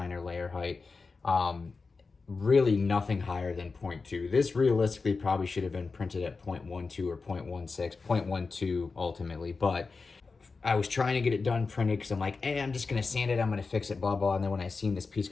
layer height. Really nothing higher than 0.2. This realistically probably should have been printed at 0.12 or 0.16, 0.12 ultimately, but I was trying to get it done printed because I'm like, hey, I'm just gonna sand it, I'm gonna fix it, blah, blah. And then when I seen this piece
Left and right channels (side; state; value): right; quieter; 4.3 dB